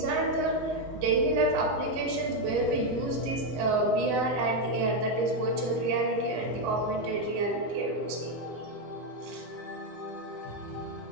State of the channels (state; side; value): late; left; 8.0 ms